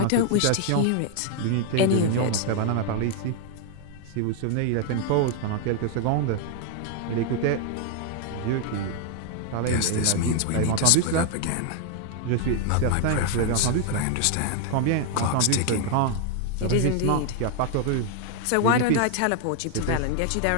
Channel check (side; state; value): both; different; correlation 0.00